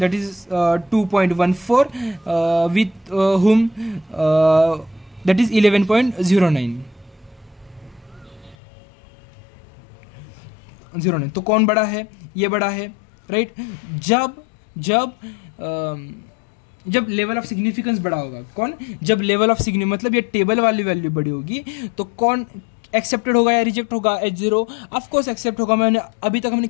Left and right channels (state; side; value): drops out; right; at 8.6 s